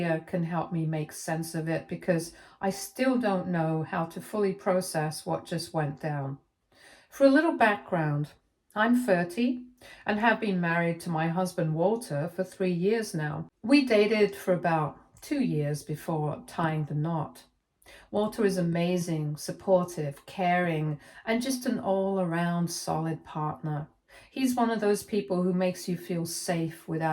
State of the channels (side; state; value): both; identical; correlation 1.00